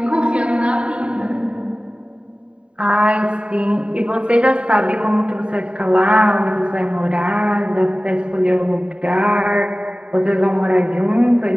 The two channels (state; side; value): late; left; 0.055 ms